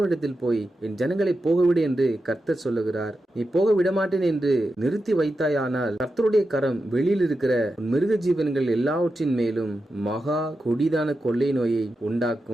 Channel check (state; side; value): normal; both; correlation 0.90